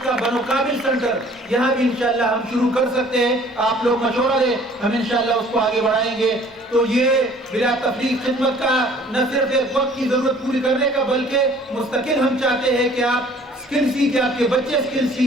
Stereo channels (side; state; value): both; normal; correlation 0.53